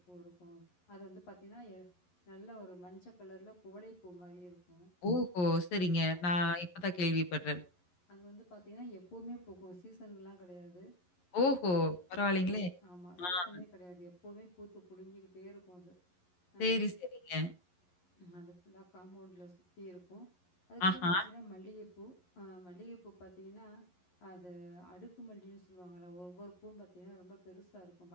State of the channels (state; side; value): late; right; 11 ms